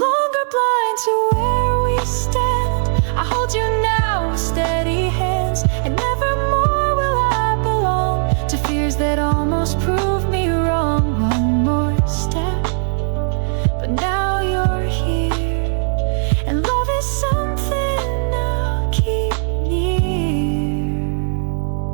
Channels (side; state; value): left; silent; digital silence